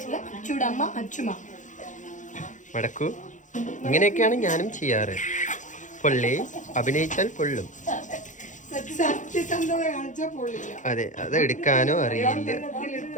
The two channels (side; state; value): right; late; 0.36 ms